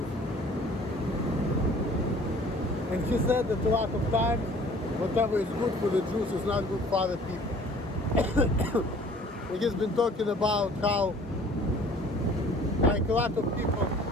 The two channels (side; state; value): both; normal; correlation 0.52